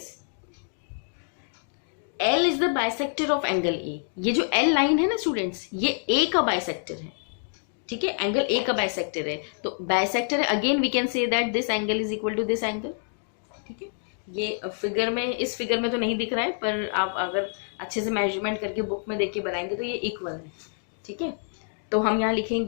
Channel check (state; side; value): silent; right; 60 dB below the other